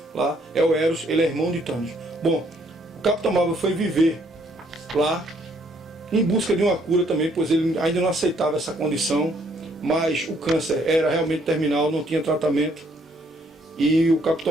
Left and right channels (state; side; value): normal; both; correlation 0.67